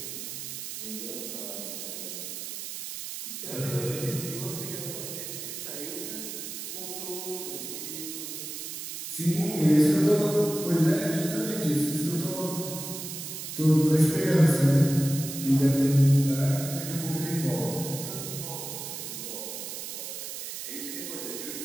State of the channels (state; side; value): noise; right; hiss, 7 dB below the sound